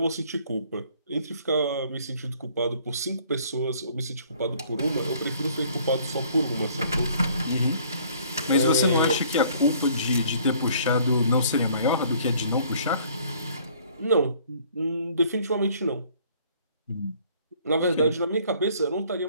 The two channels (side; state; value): both; inverted; correlation -0.58